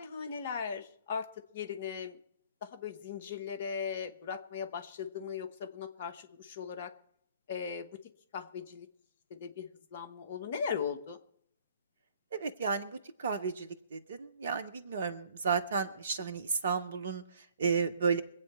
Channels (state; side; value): inverted; both; correlation -0.57